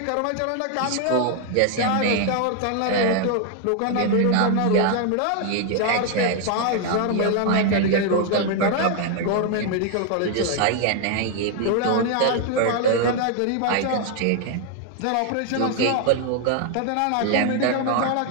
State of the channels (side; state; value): both; different; correlation 0.00